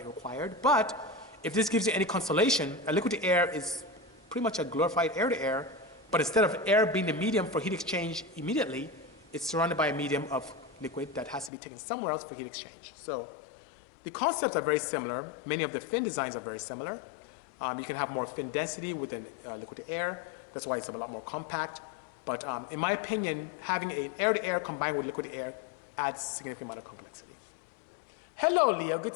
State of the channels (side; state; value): right; drops out; at 11.5 s